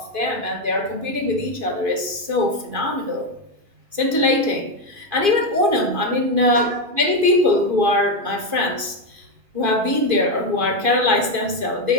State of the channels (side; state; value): left; late; 2.5 ms